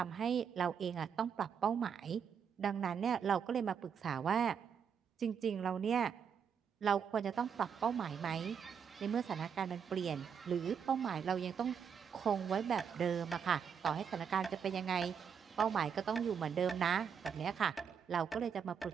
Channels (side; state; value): left; quieter; 7.2 dB